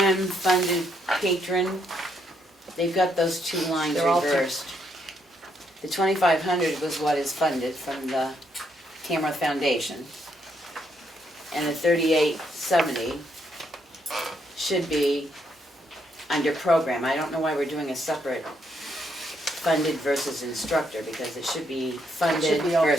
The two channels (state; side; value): normal; both; correlation 0.75